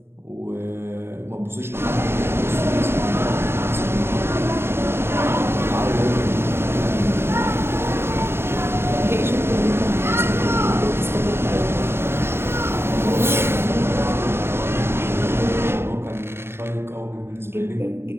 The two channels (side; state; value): left; late; 0.12 ms